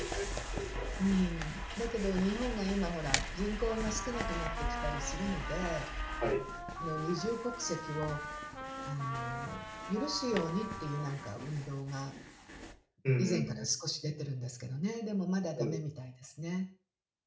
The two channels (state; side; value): identical; both; correlation 1.00